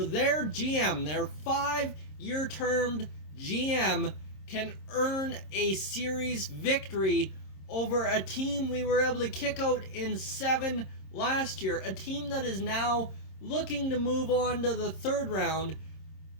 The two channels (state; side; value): late; right; 26 ms